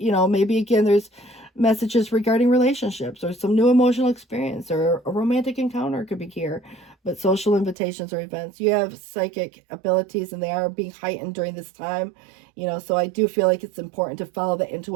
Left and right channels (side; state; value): left; drops out; at 7.8 s